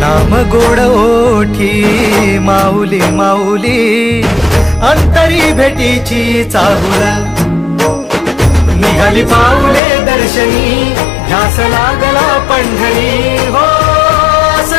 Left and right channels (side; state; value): right; drops out; at 9.8 s